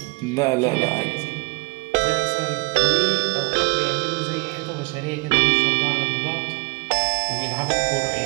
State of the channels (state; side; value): quieter; left; 29.1 dB